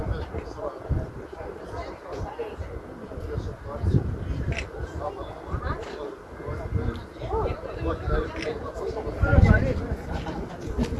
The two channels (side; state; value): both; identical; correlation 1.00